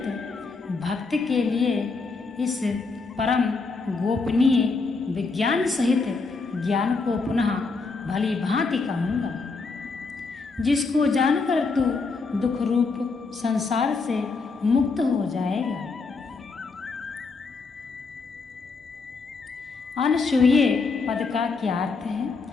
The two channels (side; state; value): right; quieter; 4.3 dB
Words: भक्त के लिए इस परम गोपनीय विज्ञान सहित ज्ञान को पुनः भली भांति कहूँगा, जिसको जानकर तू दुख रूप संसार से मुक्त हो जाएगा। अनसूये पद का क्या अर्थ